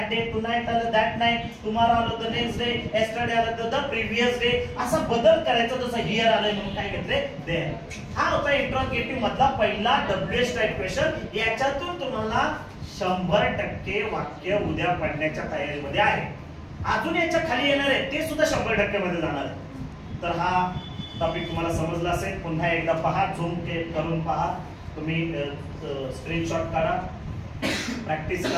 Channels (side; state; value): both; identical; correlation 1.00